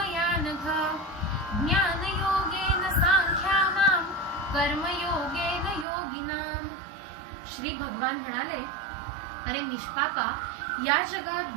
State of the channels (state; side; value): drops out; left; at 5.9 s